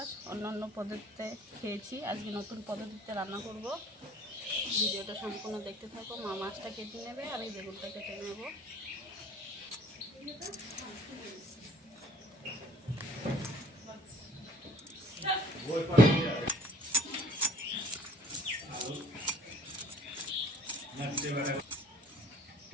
অন্য পদ্ধতিতে খেয়েছি, আজকে নতুন পদ্ধতিতে রান্না করব। ভিডিওটা সম্পূর্ণ দেখতে থাকো। মা মাছটা কেটে নেবে আর এই বেগুনটা কেটে নেব।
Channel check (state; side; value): normal; both; correlation 0.55